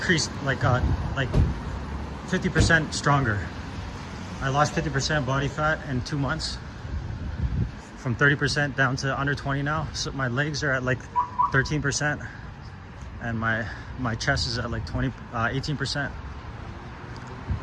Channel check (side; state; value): both; identical; correlation 1.00